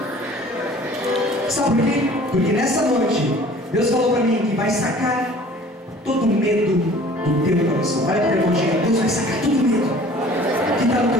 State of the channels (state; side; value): normal; both; correlation 0.49